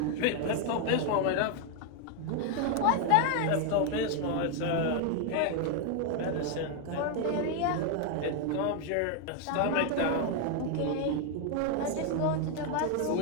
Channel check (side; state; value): both; different; correlation 0.01